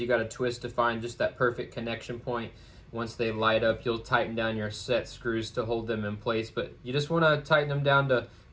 you got to twist to find just that perfect connection point. Once they light up, you'll tighten down your set screws to hold them in place, but you just want to tighten them down to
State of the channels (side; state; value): both; identical; correlation 1.00